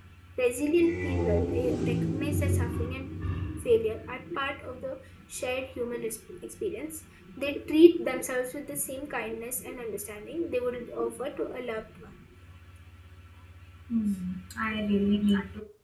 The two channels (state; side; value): identical; both; correlation 1.00